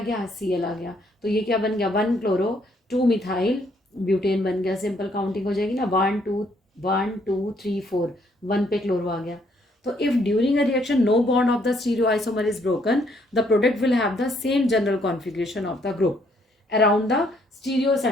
Cl आ गया. तो ये क्या बन गया, 1 क्लोरो 2 मिथाइल ब्यूटेन बन गया. सिंपल काउंटिंग हो जाएगी ना, 1 2 3 4, 1 पे क्लोरो आ गया. So if during a reaction no bond of the stereoisomer is broken, the product will have the same general configuration of the group around the stereo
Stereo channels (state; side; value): normal; both; correlation 0.69